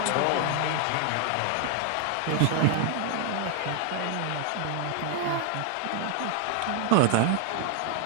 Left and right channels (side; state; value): both; different; correlation 0.00